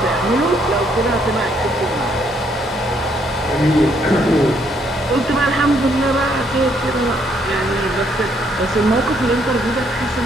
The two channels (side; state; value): both; normal; correlation 0.70